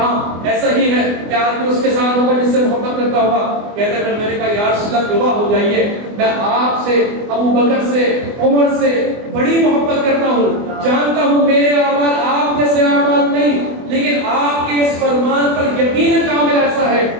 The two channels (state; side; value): late; left; 24 ms